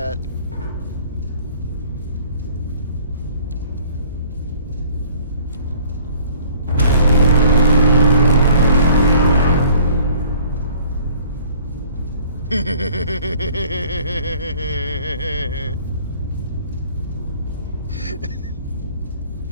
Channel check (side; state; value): both; inverted; correlation -0.53